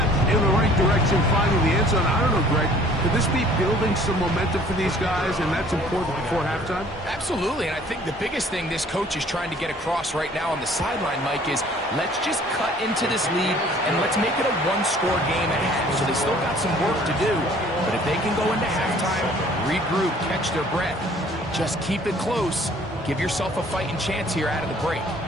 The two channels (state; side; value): normal; both; correlation 0.55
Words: in the right direction, finding the end zone. I don't know, Greg, could this be building some momentum for these guys, and that's important before halftime? Absolutely, and I think the biggest thing this coach is trying to get across right now on the sideline, Mike, is let's just cut into this lead and let's make it a one-score game at half. So they still got some work to do, but if they can go into halftime, regroup, catch their breath, just keep it close, give yourself a fighting chance here out of the break.